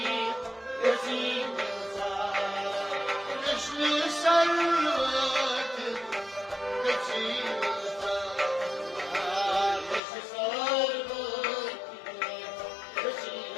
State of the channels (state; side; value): drops out; right; at 10.0 s